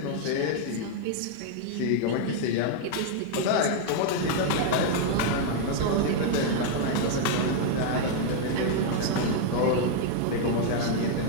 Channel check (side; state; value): both; different; correlation 0.00